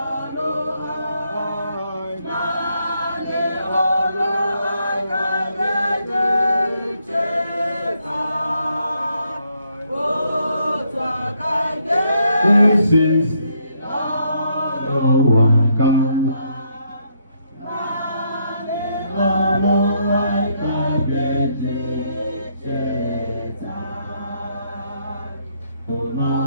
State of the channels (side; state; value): both; inverted; correlation -0.74